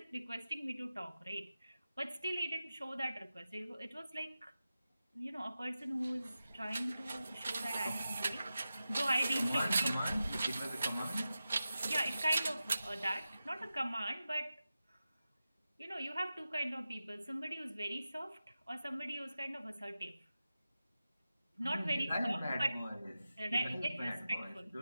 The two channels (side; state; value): both; inverted; correlation -0.93